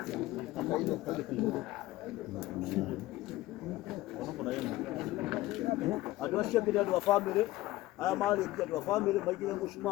Andũ acio angĩ nĩ andũ a bamĩrĩ aya marĩkia andũ a bamĩrĩ maigĩrĩre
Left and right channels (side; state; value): right; quieter; 17.1 dB